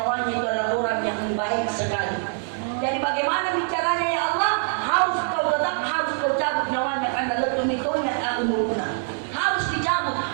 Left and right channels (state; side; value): silent; left; 55 dB below the other